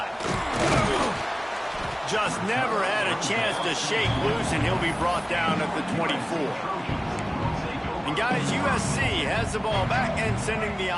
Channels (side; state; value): both; identical; correlation 1.00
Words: Just never had a chance to shake loose, and he'll be brought down at the 24. And And guys, USC has the ball back and sending the